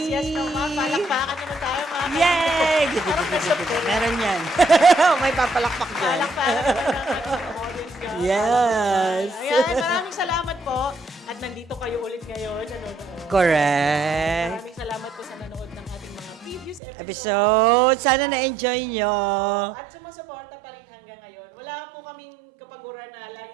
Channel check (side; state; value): left; drops out; at 16.8 s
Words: Yes. Palakpakan naman tayo mga Yay! kaibigan. Meron yan. May papalakpak dyan. Palakpakan naman ang ating audience nyo. Yes. Ayan, maraming salamat po. At nandito kayo ulit ngayon. Correct. Maraming salamat po sa nanood ng ating mga previous Episode. Sana na-enjoy nyo. At sumusuporta pa rin hanggang ngayon. Wala po kaming kapaguran na lagi